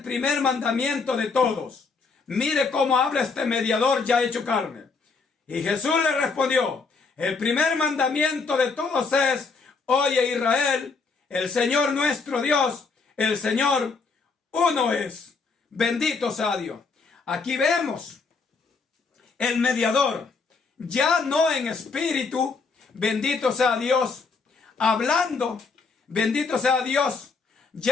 primer mandamiento de todos? Mire cómo habla este mediador ya hecho carne. Y Jesús le respondió, el primer mandamiento de todos es, oye Israel, el Señor nuestro Dios, el Señor uno es. Bendito sea Dios. Aquí vemos el mediador, ya no en espíritu, bendito sea Dios, hablando, bendito sea Dios,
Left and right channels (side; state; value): right; quieter; 4.6 dB